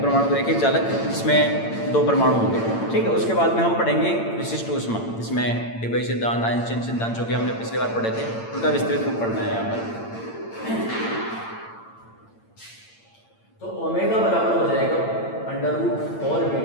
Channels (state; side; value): late; right; 8.8 ms